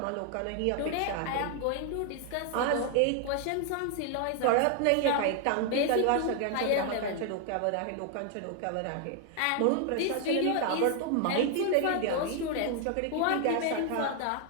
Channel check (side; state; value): both; different; correlation 0.00